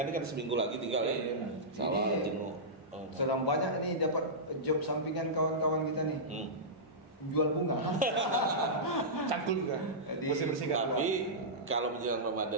ini kan seminggu lagi tinggal ya. Salah jenuh. Sedang banyak nih dapat job sampingan kawan-kawan kita nih. Jual bunga. Cangkul juga. Bersih-bersihkan. Tapi kalau menjelang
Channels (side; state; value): both; normal; correlation -0.14